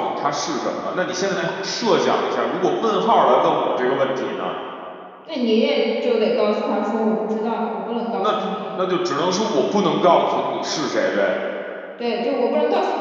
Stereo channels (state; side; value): identical; both; correlation 1.00